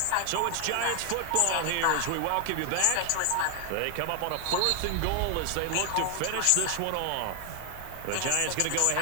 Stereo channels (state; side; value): different; both; correlation 0.00